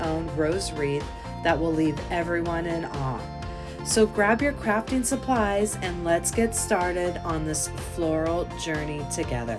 rose wreath that will leave everyone in awe. So grab your crafting supplies and let's get started on this floral journey together.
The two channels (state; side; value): identical; both; correlation 1.00